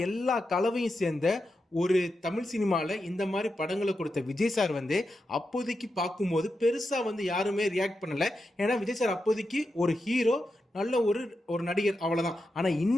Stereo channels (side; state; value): both; normal; correlation 0.88